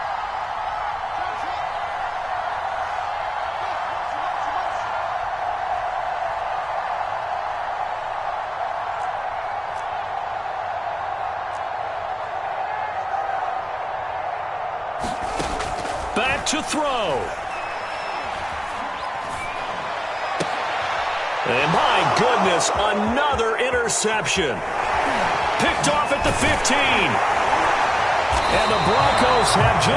Back to throw. And my goodness, another interception. Picked off at the 15. And the Broncos have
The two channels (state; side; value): identical; both; correlation 1.00